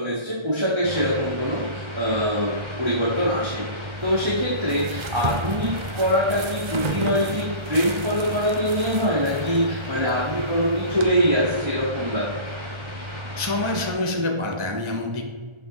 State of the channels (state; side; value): late; left; 1.3 ms